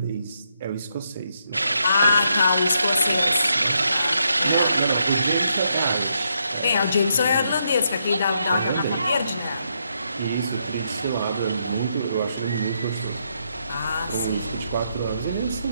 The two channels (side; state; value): both; inverted; correlation -0.78